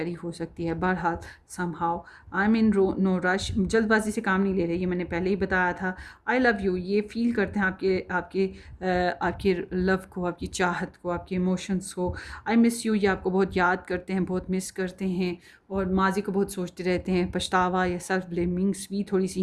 हो सकती है। बहरहाल somehow I am in no rush, जल्दबाजी से काम नहीं ले रहे, ये मैंने पहले ही बताया था। आई लव यू, ये फील करते हैं आपके लव को, आपकी चाहत को, आपके इमोशंस को। आई मिस यू, ये आपको बहुत याद करते हैं, बहुत मिस करते हैं और माजी को बहुत सोचते रहते हैं। पछतावा या सेल्फ ब्लेमिंग्स भी थोड़ी सी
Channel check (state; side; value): identical; both; correlation 1.00